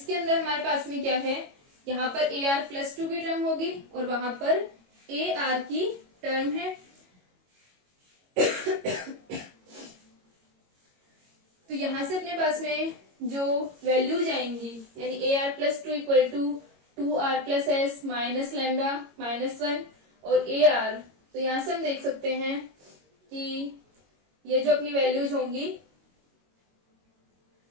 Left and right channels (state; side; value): late; left; 22 ms